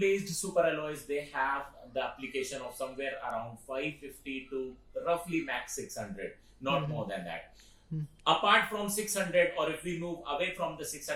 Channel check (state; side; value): identical; both; correlation 1.00